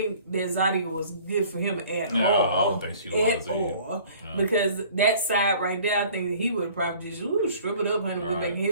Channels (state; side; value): inverted; both; correlation -0.52